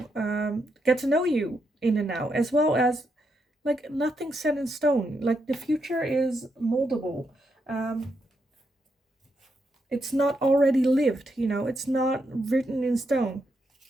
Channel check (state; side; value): normal; both; correlation 0.81